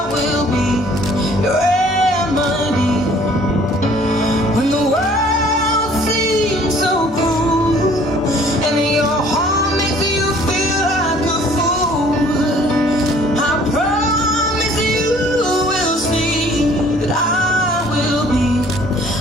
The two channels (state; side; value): normal; both; correlation 0.56